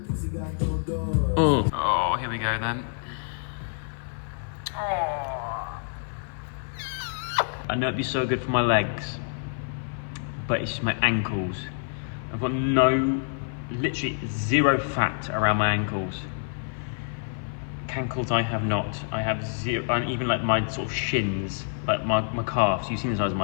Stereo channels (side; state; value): right; silent; 55 dB below the other